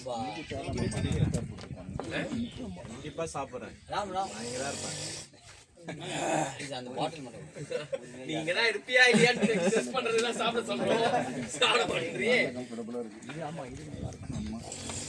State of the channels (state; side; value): identical; both; correlation 1.00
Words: இப்ப சாப்பிடுறேன் ராம் ராம் இங்கதான் இருப்பேன். இது அந்த பாட்டில் மட்டும். நீங்க தான் இருப்பியா இல்லையான்னு டெஸ்ட் பண்றதுலாம் சாப்பிட சொல்றோம். சாப்பிட மாட்டீங்க.